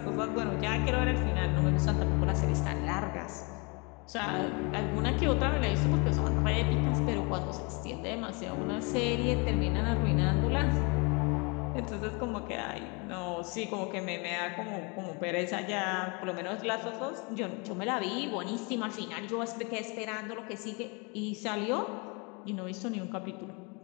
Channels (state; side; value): quieter; right; 31.2 dB